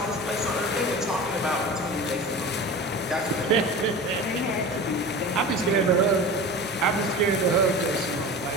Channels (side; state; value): both; normal; correlation 0.33